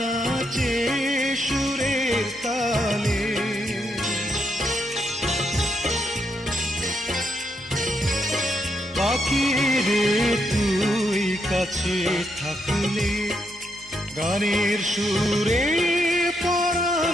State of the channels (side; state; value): both; normal; correlation 0.79